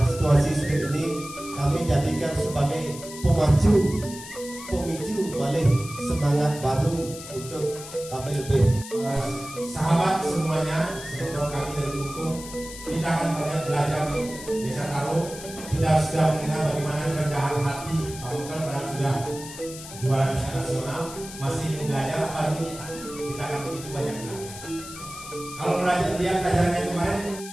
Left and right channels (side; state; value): left; noise; hiss, 13 dB below the sound